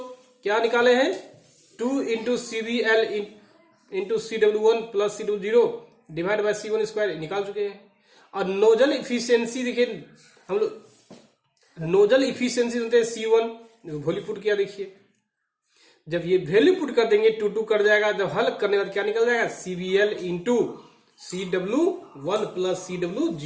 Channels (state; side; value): identical; both; correlation 1.00